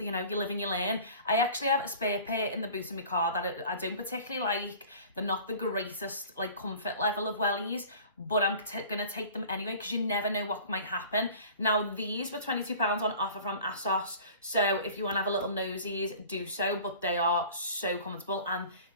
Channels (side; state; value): both; inverted; correlation -0.44